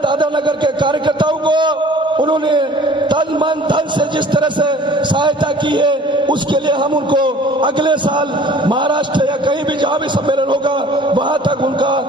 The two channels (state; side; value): normal; both; correlation 0.49